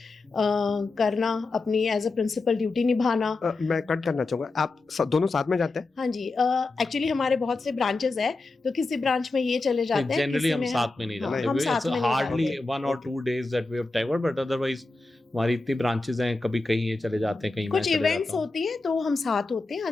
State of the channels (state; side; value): quieter; right; 3.4 dB